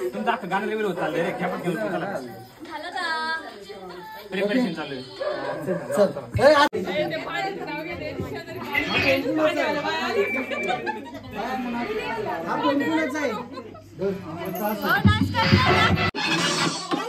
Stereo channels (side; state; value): both; identical; correlation 1.00